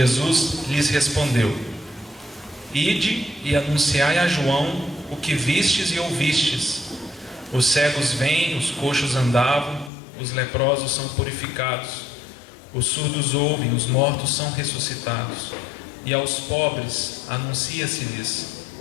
lhes respondeu: Ide e anunciai a João o que vistes e ouvistes: os cegos vêm, os coxos andavam, os leprosos são purificados, os surdos ouvem, os mortos são ressuscitados, e aos pobres anuncia-se-lhes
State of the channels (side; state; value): right; drops out; at 9.9 s